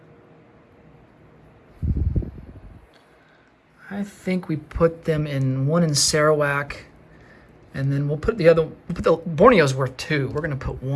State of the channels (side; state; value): both; identical; correlation 1.00